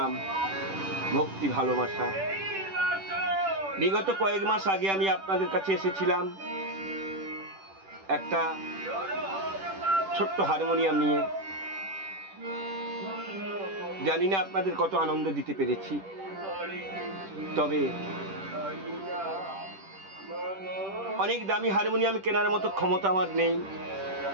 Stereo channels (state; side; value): late; left; 10 ms